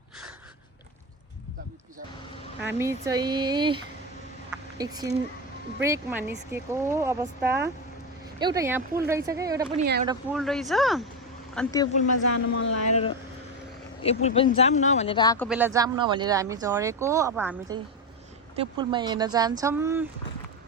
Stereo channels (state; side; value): normal; both; correlation 0.14